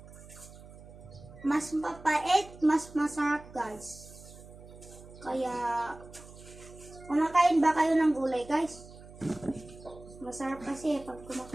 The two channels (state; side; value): noise; right; hum, 18 dB below the sound